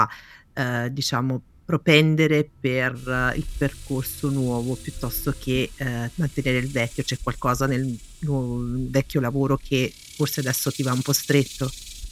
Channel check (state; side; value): identical; both; correlation 1.00